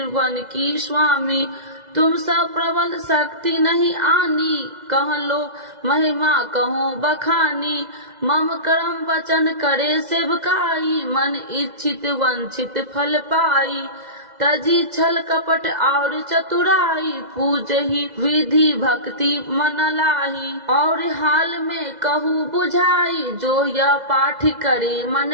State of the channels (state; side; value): late; left; 2.0 ms